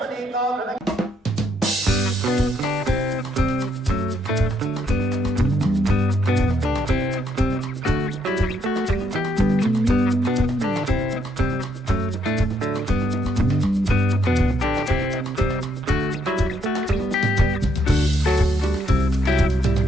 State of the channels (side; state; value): both; normal; correlation 0.74